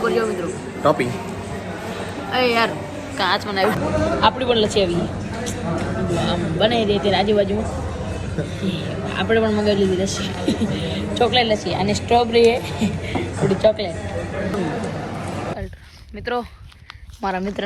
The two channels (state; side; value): identical; both; correlation 1.00